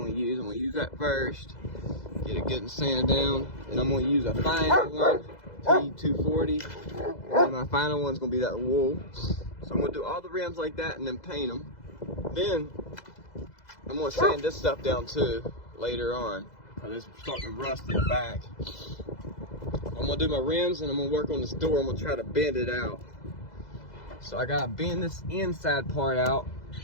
to use that first. Get it good and sanded down. And I'm going to use a final one, T240. And my final one's going to be that wool. So I'm going to do all the rims like that and then paint them. Then I'm going to sand this stuff down too later on. Because it's starting to rust in the back. I'm going to do my rims and I'm going to work on this door. I'm going to try to bend it out. So I got to bend this inside part out.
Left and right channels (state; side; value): late; right; 2.0 ms